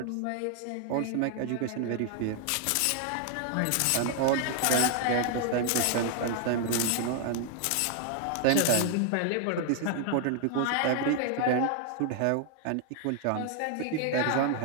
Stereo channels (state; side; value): different; both; correlation 0.00